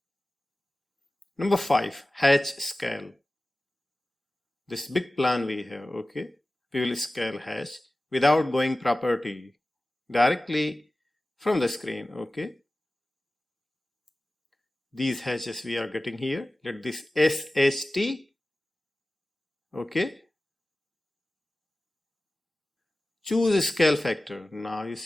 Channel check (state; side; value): normal; both; correlation 0.96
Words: Number 5, hatch scale. This big plan we have, okay? We will scale hatch without going property, directly from the screen, okay? These hatches we are getting here. Let this SHT, okay? Choose scale factor. Now you